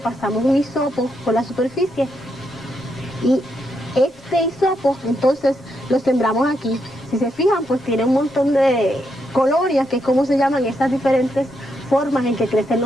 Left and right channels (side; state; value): both; normal; correlation 0.80